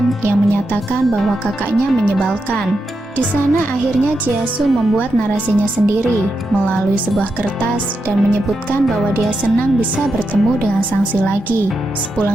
yang menyatakan bahwa kakaknya menyebalkan. Di sana akhirnya Jiasu membuat narasinya sendiri melalui sebuah kertas dan menyebutkan bahwa dia senang bisa bertemu dengan Sangsi lagi.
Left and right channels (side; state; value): both; normal; correlation 0.86